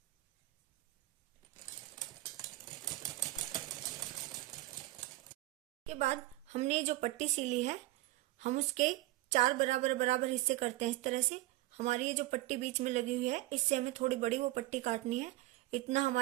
के बाद हमने जो पट्टी सिली है हम उसके 4 बराबर हिस्से करते हैं इस तरह से। हमारी ये जो पट्टी बीच में लगी हुई है इससे हमें थोड़ी बड़ी वो पट्टी काटनी है। इतना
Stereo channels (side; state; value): left; quieter; 17.5 dB